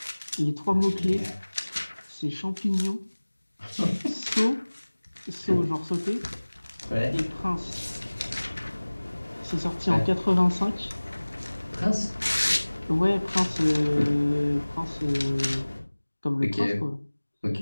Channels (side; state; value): both; inverted; correlation -1.00